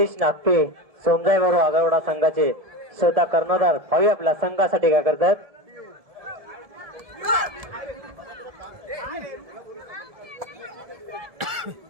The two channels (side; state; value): left; late; 1.7 ms